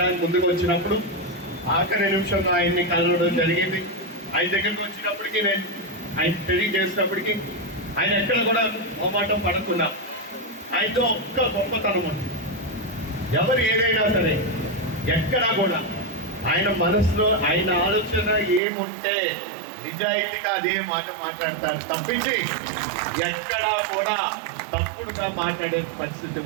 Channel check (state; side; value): drops out; left; at 18.6 s